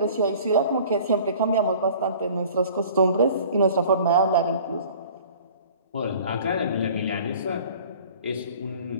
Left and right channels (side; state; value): both; inverted; correlation -0.48